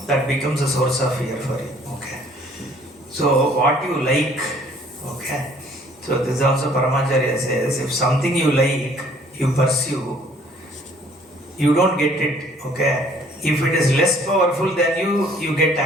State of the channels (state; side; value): normal; both; correlation 0.58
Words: that becomes a source of fear for you. Okay. So what you like, okay. So this also Paramacharya says, if something you like, you pursue, you don't get it. Okay. If it is less powerful than you get